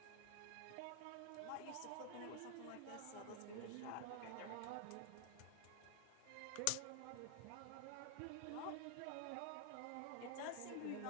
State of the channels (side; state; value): both; different; correlation 0.00